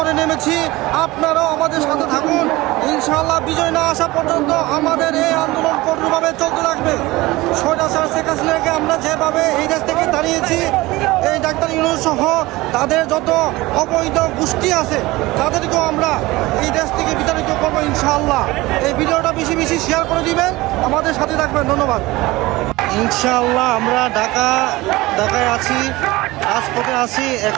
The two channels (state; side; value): quieter; left; 20.1 dB